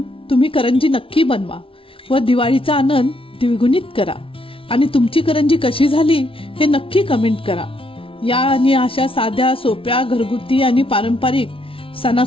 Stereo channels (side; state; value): right; late; 0.26 ms